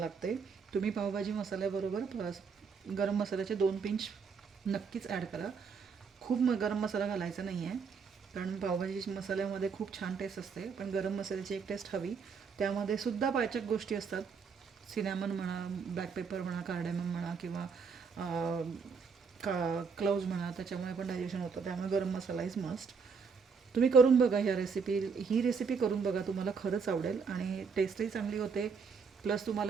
तुम्ही पावभाजी मसाल्याबरोबर गरम मसाल्याचे 2 पिंच नक्कीच ॲड करा. खूप गरम मसाला घालायचा नाही आहे, कारण पावभाजी मसाल्यामध्ये खूप छान टेस्ट असते, पण गरम मसाल्याची एक टेस्ट हवी. त्यामध्ये सुद्धा पाचक गोष्टी असतात, सिनॅमन म्हणा, ब्लॅक पेपर म्हणा, कार्डेमम म्हणा, किंवा क्लोव्ज म्हणा, त्याच्यामुळे पण डायजेशन होतं. त्यामुळे गरम मसाला इज मस्ट. तुम्ही करून बघा ही रेसिपी करून बघा, तुम्हाला खरंच आवडेल आणि टेस्टही चांगली होते. प्लस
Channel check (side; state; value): left; quieter; 5.6 dB